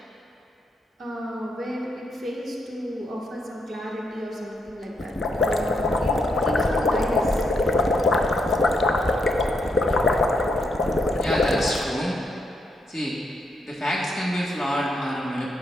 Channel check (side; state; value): both; normal; correlation 0.79